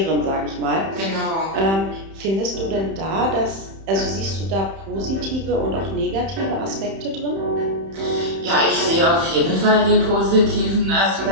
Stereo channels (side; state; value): left; late; 31 ms